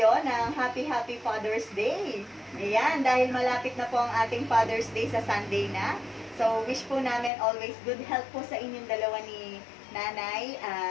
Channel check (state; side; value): drops out; right; at 7.3 s